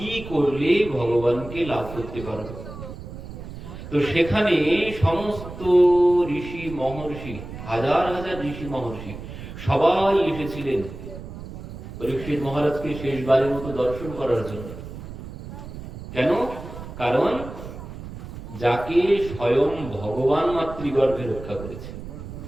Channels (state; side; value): noise; right; rumble, 11 dB below the sound